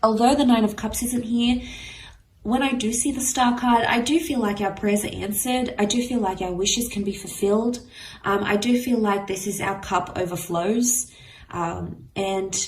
although the Nine of Cups isn't here, when I do see the star card, I do feel like our prayers are answered. I do feel like our wishes can be fulfilled. I do feel like this is our cup overflows. And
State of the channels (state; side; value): identical; both; correlation 1.00